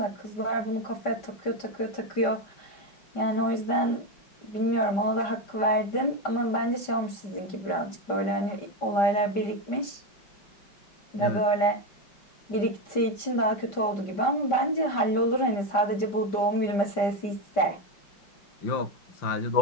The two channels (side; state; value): right; late; 5.1 ms